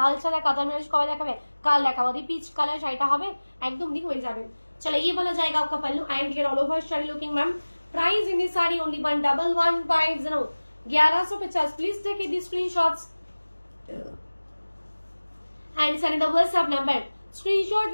সাদা কাতার ম্যাচ কবে দেখাবে? কাল দেখাবো দি। পিচ কালার শাড়িটা হবে একদম দি হয়ে যাবে। चलो ये वाला जाएगा आपका पल्लू and here all over sari looking ma'am. Price in this sari only 1150, 1150। Please take the screenshots and send the WhatsApp number. Screenshot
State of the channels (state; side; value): inverted; both; correlation -1.00